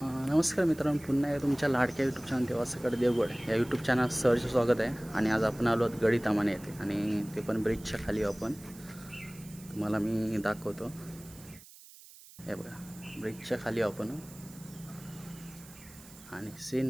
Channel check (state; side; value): noise; right; hiss, 20 dB below the sound